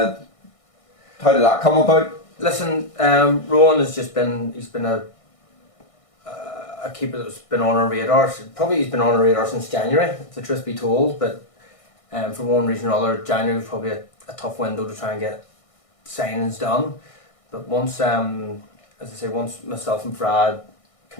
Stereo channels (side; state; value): right; late; 1.6 ms